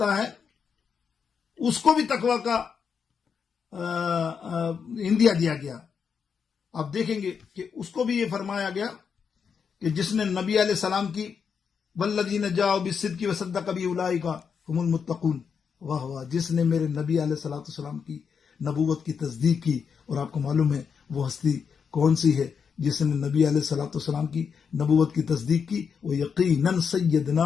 ہے اس کو بھی تقوی کا اندیا دیا گیا. آپ دیکھیں گے کہ اس کو بھی یہ فرمایا گیا کہ جس نے نبی علیہ السلام کی والذین جاءوا بالصدق وصدق بہ اولئک ھم المتقون. واہ واہ، جس نے میرے نبی علیہ الصلوۃ والسلام کی نبوت کی تصدیق کی. اور آپ کو معلوم ہے وہ ہستی کون سی ہے جس نے نبی علیہ الصلوۃ والسلام کی نبوت کی تصدیق کی؟ وہ یقیناً سیدنا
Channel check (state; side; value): quieter; right; 6.4 dB